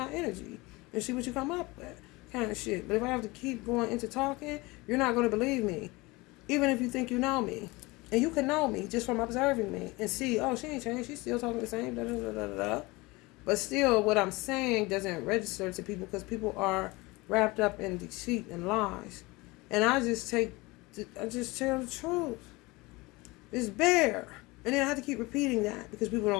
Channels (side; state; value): right; quieter; 23.2 dB